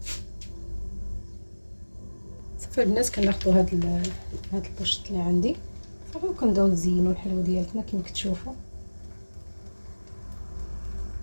صافي البنات كناخذوا هاد البوشط اللي عندي صافي وكنبداو نزينوا الحلوه ديالتنا كما كتشوفوا.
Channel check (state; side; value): inverted; both; correlation -1.00